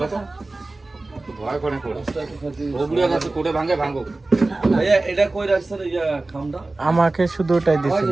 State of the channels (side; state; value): left; quieter; 3.1 dB